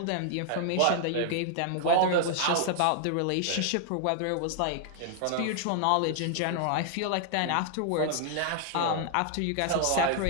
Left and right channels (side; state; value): both; different; correlation 0.00